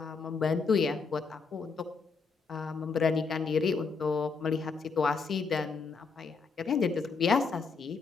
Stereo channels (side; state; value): right; quieter; 4.9 dB